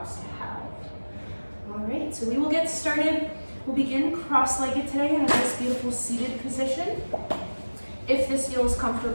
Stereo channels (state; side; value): inverted; both; correlation -1.00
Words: to have. All right, so we will get started. We'll begin cross-legged today in a nice, beautiful seated position. If this feels